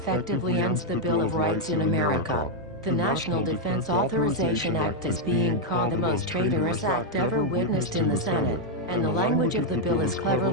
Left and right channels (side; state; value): both; normal; correlation 0.00